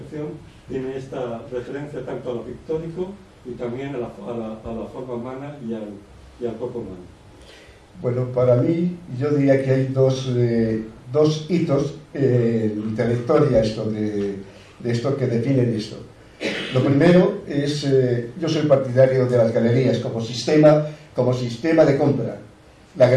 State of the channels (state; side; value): identical; both; correlation 1.00